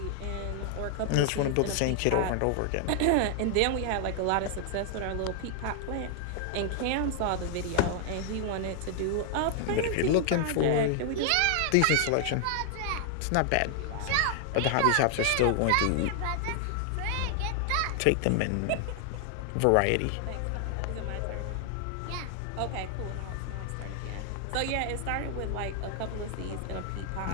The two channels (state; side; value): different; both; correlation 0.00